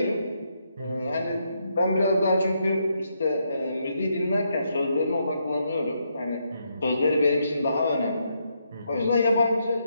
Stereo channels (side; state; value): both; inverted; correlation -0.78